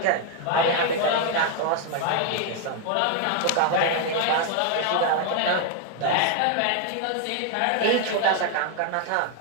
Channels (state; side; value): different; both; correlation 0.00